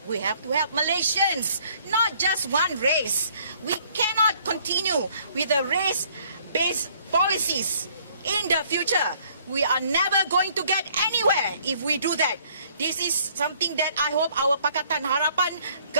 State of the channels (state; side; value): inverted; both; correlation -0.61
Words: We have to help Malaysians, not just one race. We cannot continue with the race-based policies in the future. We are never going to get anywhere if we do that. This is something that I hope our Pakatan Harapan